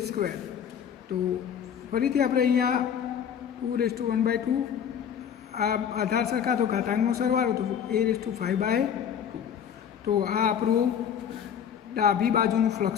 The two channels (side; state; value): right; quieter; 8.4 dB